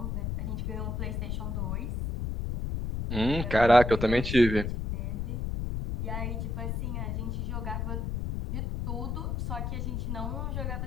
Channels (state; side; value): noise; left; rumble, 2 dB below the sound